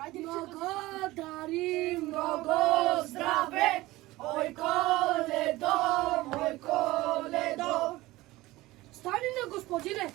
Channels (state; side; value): quieter; left; 18.8 dB